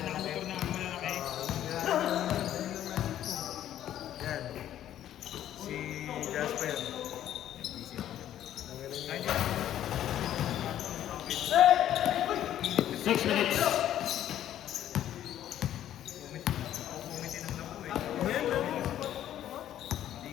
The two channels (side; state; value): right; quieter; 11.6 dB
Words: nakamotor na malalaki? Yan. Si Jasper. 6 minutes.